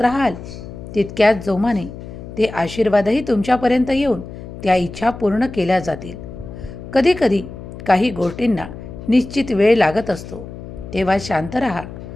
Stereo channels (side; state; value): left; noise; hum, 12 dB below the sound